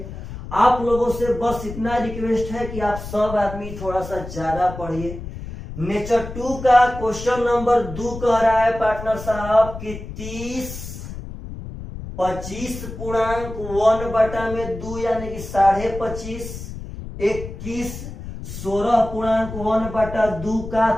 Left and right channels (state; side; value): noise; left; rumble, 10 dB below the sound